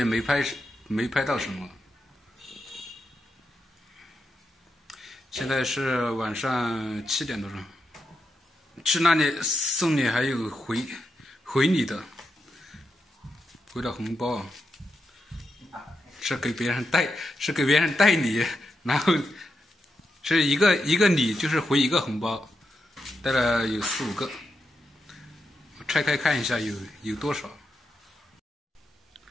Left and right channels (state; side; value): normal; both; correlation 0.86